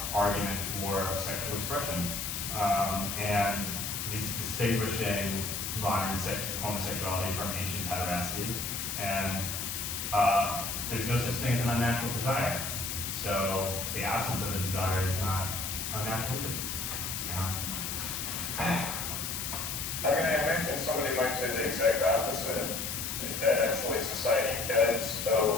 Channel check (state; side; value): noise; left; hiss, 3 dB below the sound